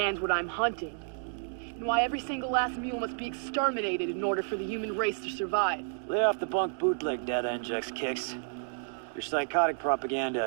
what I'm hunting, and why every single last mule must be exterminated in order for the human race to survive. Lay off the bunk bootleg data injects, Kicks. Your psychotic propaganda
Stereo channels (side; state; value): left; silent; digital silence